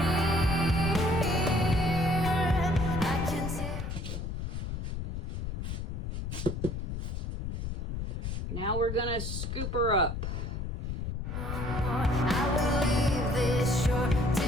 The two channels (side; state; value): left; noise; rumble, 4 dB below the sound